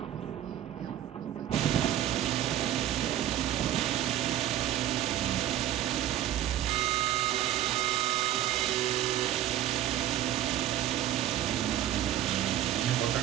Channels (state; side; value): quieter; left; 12.1 dB